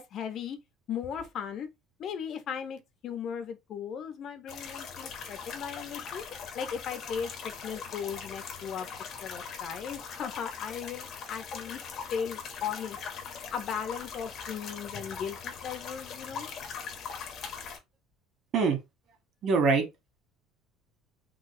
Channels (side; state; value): both; normal; correlation 0.52